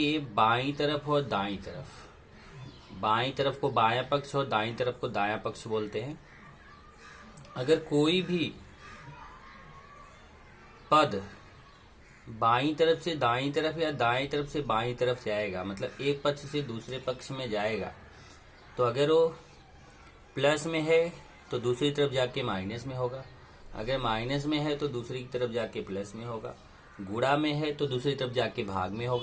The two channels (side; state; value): both; identical; correlation 1.00